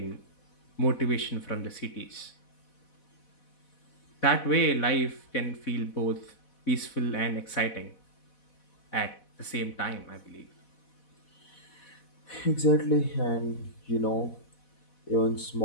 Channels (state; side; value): late; right; 4.1 ms